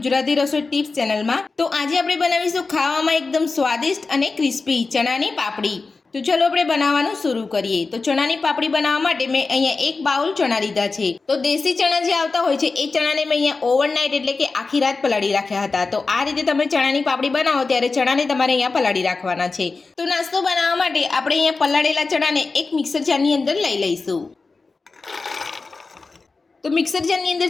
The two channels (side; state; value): right; quieter; 4.0 dB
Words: રસોઈ ટિપ્સ ચેનલમાં। તો આજે આપણે બનાવીશું ખાવામાં એકદમ સ્વાદિષ્ટ અને ક્રિસ્પી ચણાની પાપડી। તો ચલો આપણે બનાવવાનું શરૂ કરીએ। તો ચણાની પાપડી બનાવવા માટે મેં અહીંયા એક બાઉલ ચણા લીધા છે। તો દેશી ચણા જે આવતા હોય છે એ ચણાને મેં અહીંયા ઓવરનાઇટ એટલે કે આખી રાત પલાળી રાખ્યા હતા। તો આ રીતે તમે ચણાની પાપડી બનાવો ત્યારે ચણાને તમારે અહીંયા પલાળી રાખવાના છે। તો નાસ્તો બનાવવા માટે આપણે અહીંયા પલાળેલા ચણાને એક મિક્સર જારની અંદર લઈ લઈશું। તો મિક્સર જારની અંદર